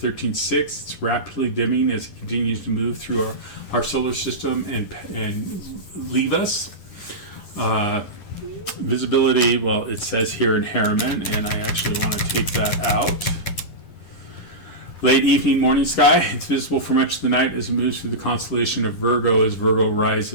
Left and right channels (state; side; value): late; right; 9.9 ms